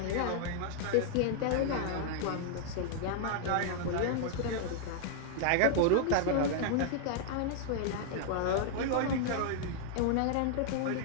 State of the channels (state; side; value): different; both; correlation 0.00